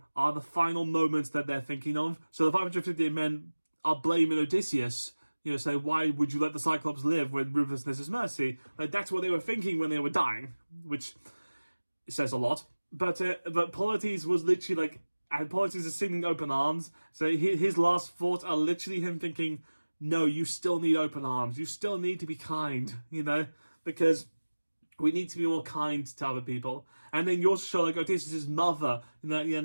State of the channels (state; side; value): inverted; both; correlation -1.00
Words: are the final moments that they're thinking of. So the 558 men are blaming Odysseus. Say, why would you let the Cyclops live when ruthlessness is mercy? Like, that's what they were thinking when they were dying, which says a lot. But Polites was literally like, and Polites is singing open arms, so his last thoughts are literally him thinking, no, you still need open arms. You still need to be kind, because we need to be more kind to other people. And then you also show, like, Odysseus' mother, and